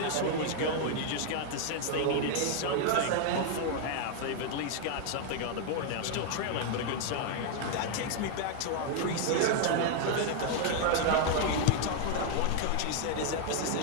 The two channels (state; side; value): different; both; correlation 0.00